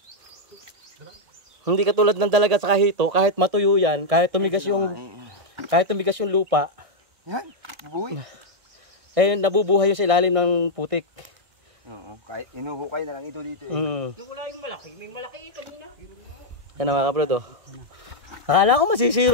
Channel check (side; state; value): left; late; 1.6 ms